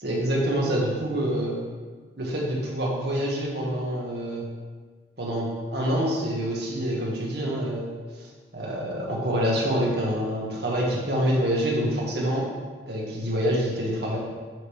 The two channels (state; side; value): normal; both; correlation 0.52